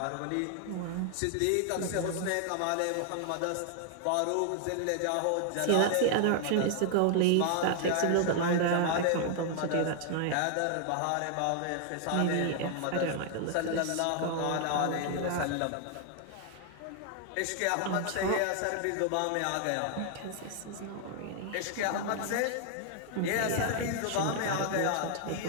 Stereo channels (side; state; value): both; different; correlation 0.00